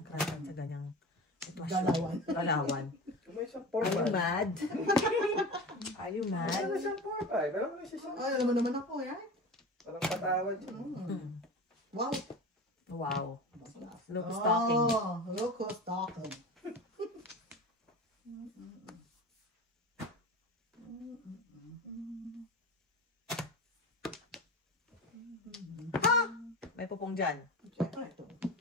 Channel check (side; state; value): both; normal; correlation 0.31